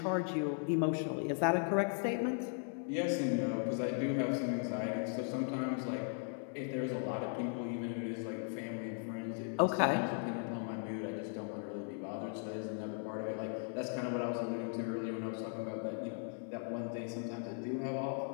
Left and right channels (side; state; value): right; silent; 53 dB below the other